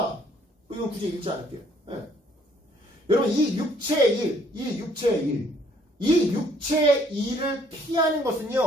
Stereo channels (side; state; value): both; normal; correlation 0.63